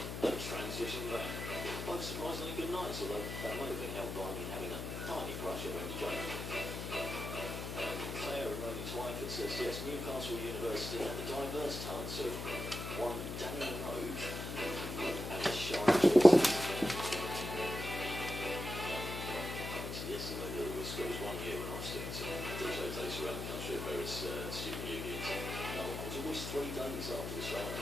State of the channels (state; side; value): noise; left; hum, 5 dB below the sound